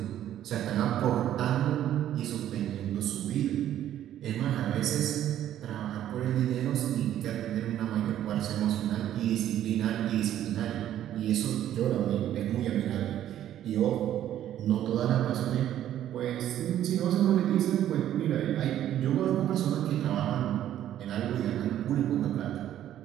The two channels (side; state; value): left; quieter; 11.6 dB